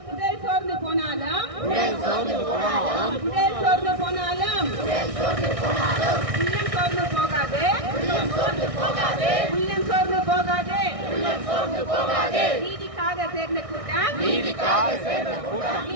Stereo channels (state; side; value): late; left; 1.6 ms